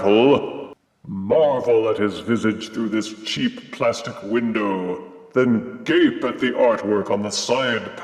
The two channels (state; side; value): identical; both; correlation 1.00